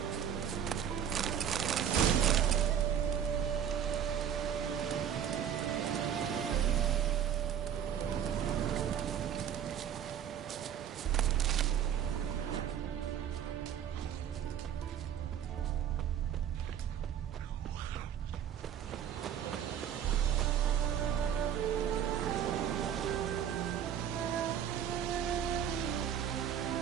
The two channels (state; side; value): quieter; left; 9.2 dB